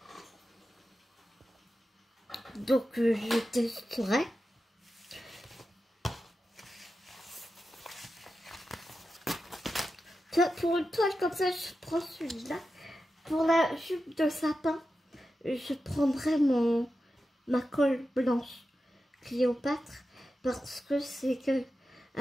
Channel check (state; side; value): normal; both; correlation 0.91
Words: Donc je testerai. Pour une toile comme ça, je prends celui-là. Pour la jupe de sapin, je prendrai ma colle blanche Cléopâtre. Parce que c'est